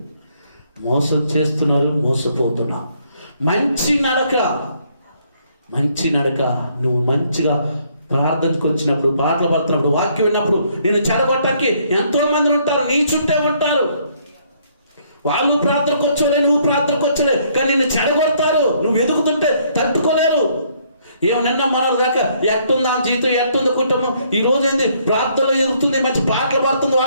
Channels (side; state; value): both; inverted; correlation -0.67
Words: మోసం చేస్తున్నారు, మోసపోతున్నారు. మంచి నడక నువ్వు మంచిగా ప్రార్థనకు వచ్చినప్పుడు, పాటలు పడుతున్నప్పుడు, వాక్యం విన్నప్పుడు నేను చెడగొట్టడానికి ఎంతో మంది ఉంటారు, నీ చుట్టే ఉంటారు. వాళ్ళు ప్రార్థనకు వచ్చలే, నువ్వు ప్రార్థనకు వచ్చలే, కానీ నిన్ను చెడగొడతారు. నువ్వు ఎదుగుతుంటే తట్టుకోలేరు. నిన్న మనలు కాక ఎట్టుంది ఆ జీవితం, ఎట్టుంది కుటుంబం, ఈ రోజు ఏంది ప్రార్థనలో ఎదుగుతుంది, మంచి పాటలు పాడుతుంది,